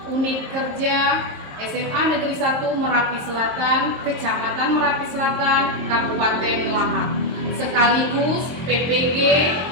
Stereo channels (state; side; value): late; left; 23 ms